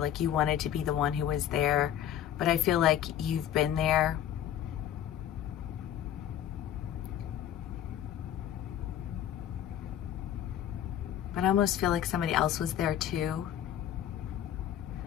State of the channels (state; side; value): quieter; right; 10.7 dB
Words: you wanted to be the one who was there, but I feel like you've been there. But I almost feel like somebody else was there too.